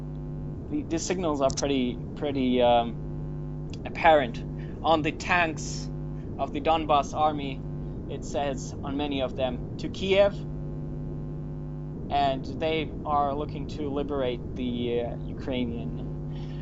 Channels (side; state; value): both; identical; correlation 1.00